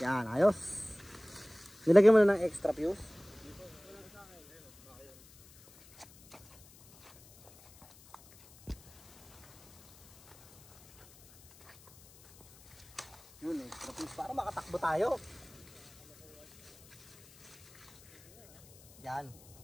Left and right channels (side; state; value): left; noise; hiss, 24 dB below the sound